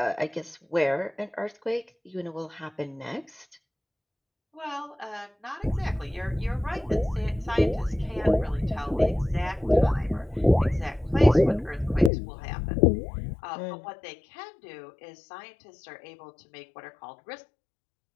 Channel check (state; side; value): drops out; right; at 12.1 s